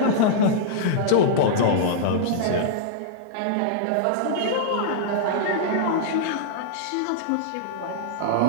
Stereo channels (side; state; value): both; different; correlation -0.02